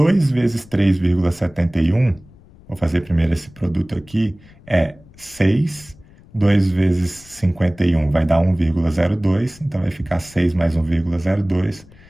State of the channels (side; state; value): left; noise; rumble, 25 dB below the sound